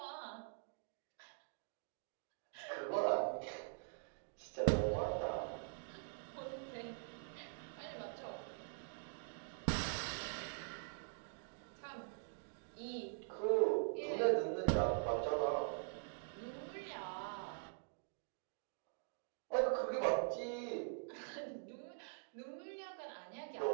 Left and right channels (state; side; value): silent; left; digital silence